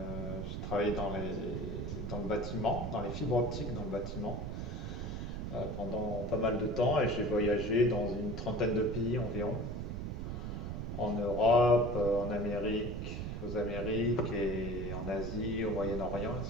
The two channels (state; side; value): noise; right; rumble, 4 dB below the sound